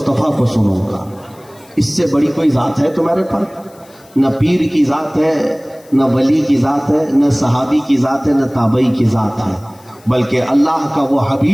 کو سنوں گا، اس سے بڑی کوئی ذات ہے تمہارے پر؟ نہ پیر کی ذات ہے، نہ ولی کی ذات ہے، نہ صحابی کی ذات ہے، نہ تابعی کی ذات ہے، بلکہ اللہ کا وہ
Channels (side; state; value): left; noise; hiss, 28 dB below the sound